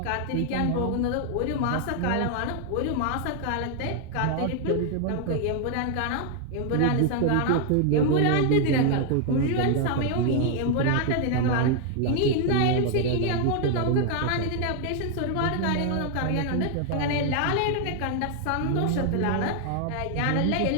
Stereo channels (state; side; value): different; both; correlation 0.00